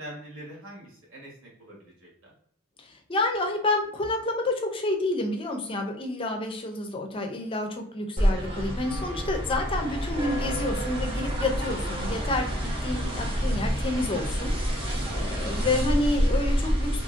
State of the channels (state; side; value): normal; both; correlation 0.57